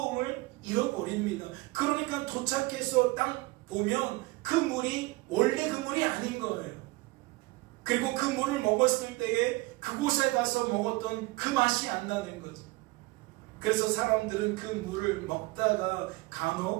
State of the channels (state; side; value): quieter; left; 22.0 dB